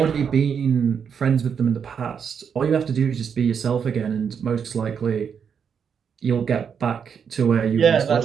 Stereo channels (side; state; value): left; quieter; 7.1 dB